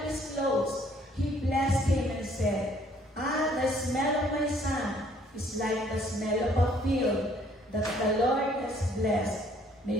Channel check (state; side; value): normal; both; correlation 0.62